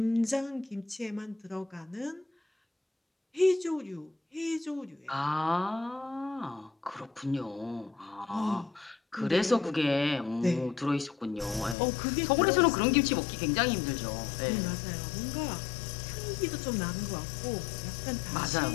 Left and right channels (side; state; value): right; drops out; at 11.8 s